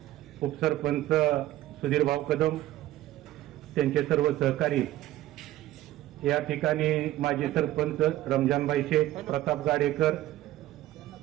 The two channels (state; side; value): quieter; left; 14.9 dB